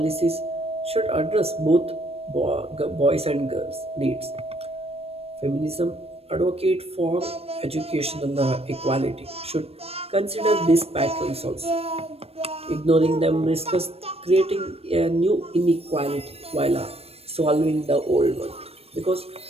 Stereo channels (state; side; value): late; left; 0.29 ms